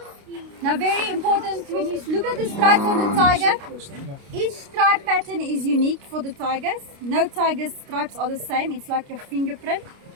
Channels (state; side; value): late; left; 29 ms